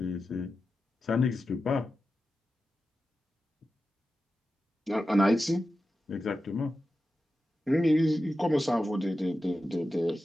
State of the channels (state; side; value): normal; both; correlation 0.92